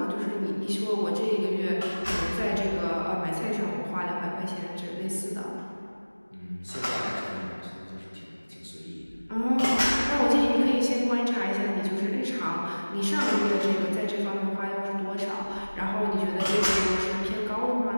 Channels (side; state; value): both; inverted; correlation -1.00